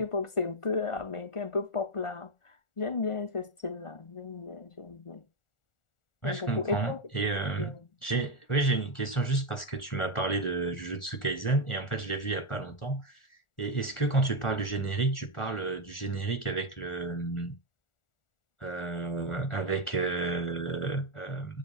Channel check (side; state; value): right; late; 1.4 ms